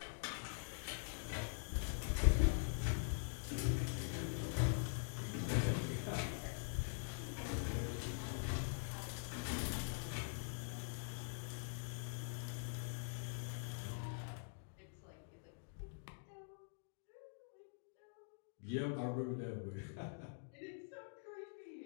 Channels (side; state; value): right; silent; digital silence